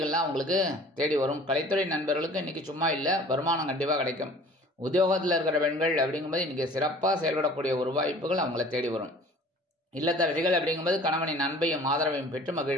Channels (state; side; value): normal; both; correlation 0.48